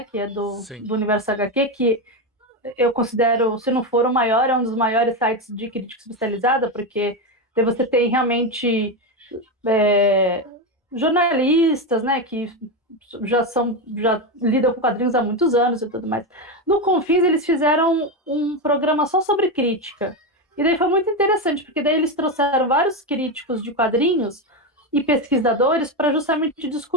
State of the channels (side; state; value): both; normal; correlation 0.12